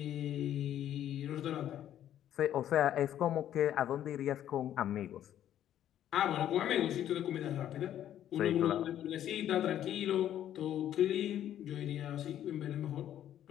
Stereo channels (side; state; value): right; quieter; 11.2 dB